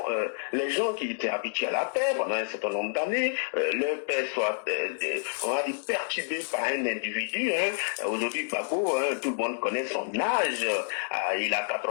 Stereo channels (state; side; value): silent; right; 59 dB below the other